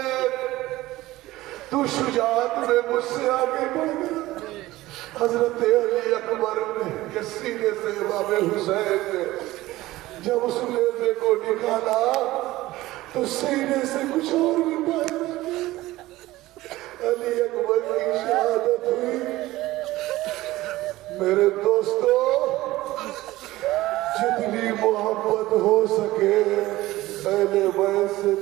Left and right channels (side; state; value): left; quieter; 17.3 dB